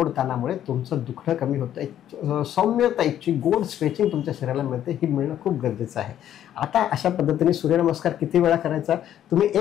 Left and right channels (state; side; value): quieter; right; 11.0 dB